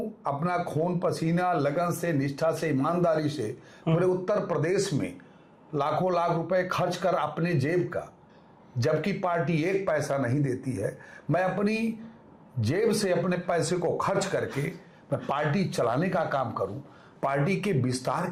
अपना खून पसीना लगन से, निष्ठा से, ईमानदारी से पूरे उत्तर प्रदेश में लाखों लाख रुपए खर्च कर अपने जेब का, जबकि पार्टी एक पैसा नहीं देती है, मैं अपनी जेब से अपने पैसे को खर्च करके मैं पार्टी चलाने का काम करूं, पार्टी के विस्तार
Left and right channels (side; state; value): both; identical; correlation 1.00